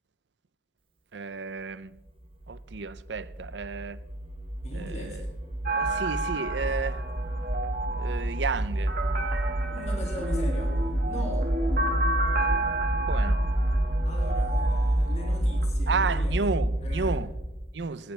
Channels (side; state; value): both; normal; correlation 0.59